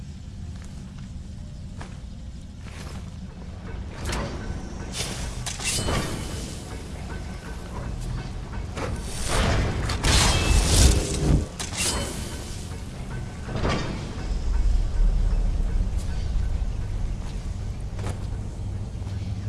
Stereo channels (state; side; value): identical; both; correlation 1.00